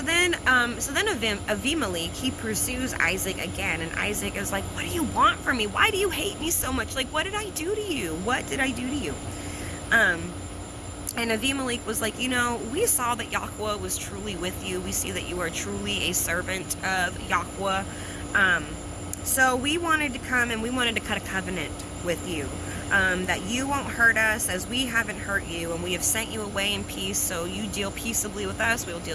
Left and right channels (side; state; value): both; identical; correlation 1.00